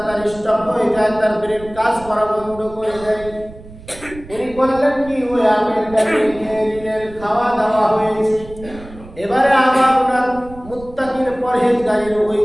তার স্টপ হয়ে যায়, তার ব্রেন কাজ করা বন্ধ করে দেয়। উনি করলেন কি, ওই আপেলটাকে খেয়ে নিলেন, খাওয়া দাওয়া হয়েছে। এবারে আবার ওনার মুত্তাকিন পরহেজগারের ওই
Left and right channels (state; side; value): noise; right; rumble, 18 dB below the sound